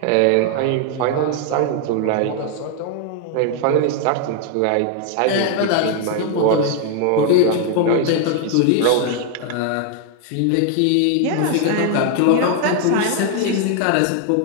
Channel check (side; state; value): both; different; correlation 0.00